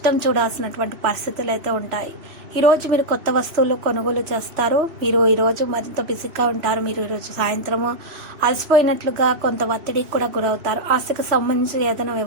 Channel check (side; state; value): left; late; 3.1 ms